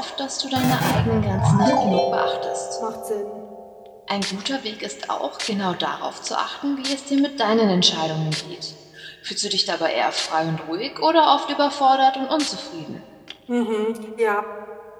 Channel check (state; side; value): identical; both; correlation 1.00